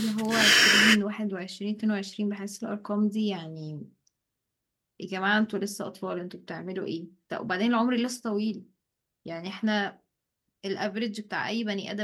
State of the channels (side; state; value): both; identical; correlation 1.00